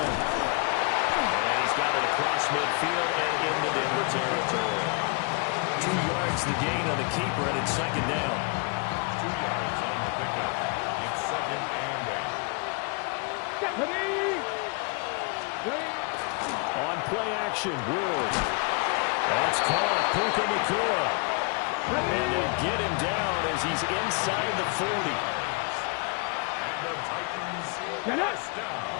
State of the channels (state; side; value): quieter; right; 33.7 dB